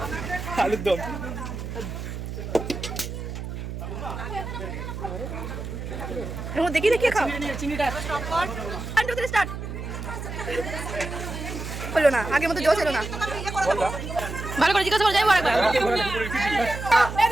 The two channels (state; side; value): noise; right; hum, 7 dB below the sound